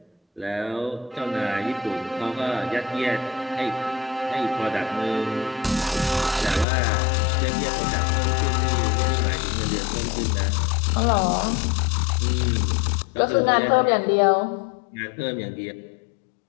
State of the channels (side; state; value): right; drops out; at 6.7 s